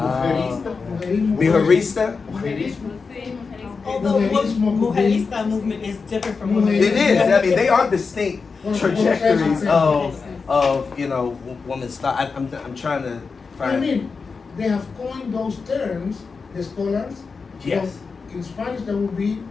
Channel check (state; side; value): quieter; right; 4.8 dB